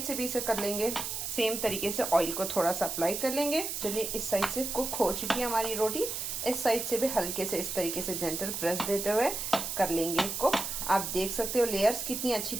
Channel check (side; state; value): right; noise; hiss, 4 dB below the sound